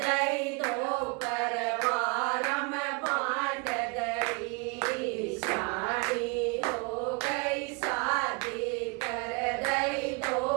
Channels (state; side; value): quieter; left; 30.7 dB